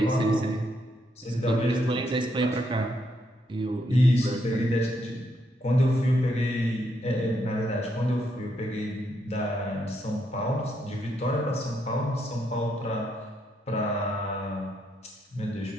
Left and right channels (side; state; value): both; normal; correlation 0.77